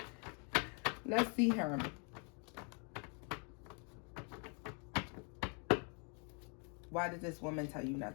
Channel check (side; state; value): right; quieter; 36.6 dB